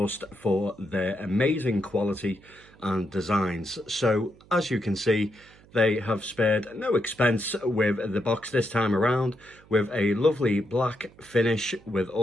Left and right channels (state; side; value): noise; right; hum, 26 dB below the sound